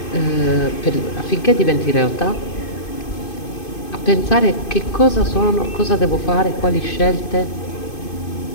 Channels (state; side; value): late; right; 2.5 ms